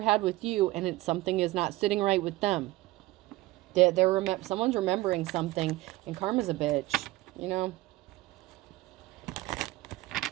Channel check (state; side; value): quieter; left; 18.6 dB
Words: with you, and something is not sitting right with them. Someone's remembering something, and karma's a bitch, you know.